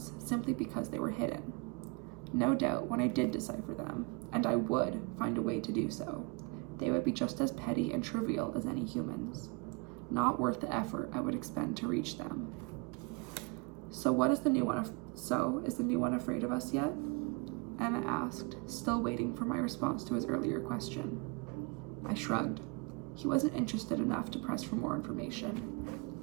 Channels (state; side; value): quieter; left; 30.6 dB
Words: simply because they were hidden. No doubt when I did decipher them, and I would find a way to do so, they would be just as petty and trivial as any humans, not worth the effort I would expend to reach them. Is the new one afraid of us yet? Emma asked, still waiting for my response to his earlier question. I shrugged. He wasn't interested enough to press for more information.